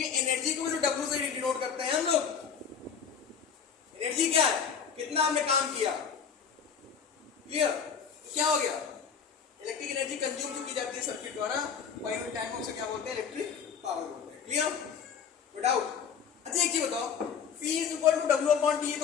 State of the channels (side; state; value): right; quieter; 6.9 dB